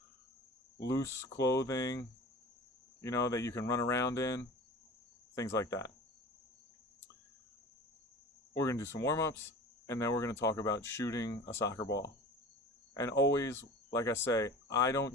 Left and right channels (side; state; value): both; normal; correlation 0.38